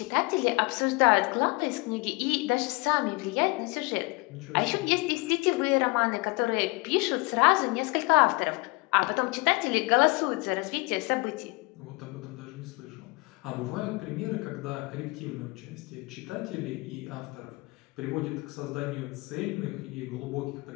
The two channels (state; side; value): quieter; right; 26.3 dB